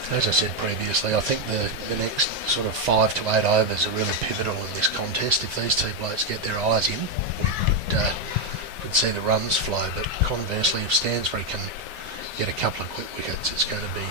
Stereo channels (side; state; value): both; normal; correlation 0.05